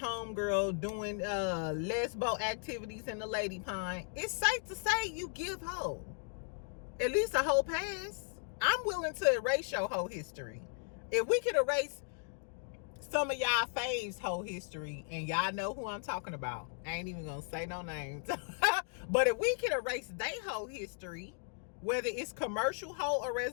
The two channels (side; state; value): right; silent; 54 dB below the other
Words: doing lesbo activities in the lady pond. It's safe to say you give hoe. At least a hoe pass. I'm willing to erase your hoe history. If we could erase some of y'all faves whole history, and y'all know who I'm talking about. I ain't even gonna say no names. But if we can erase they whole history, whether it's commercial hoe or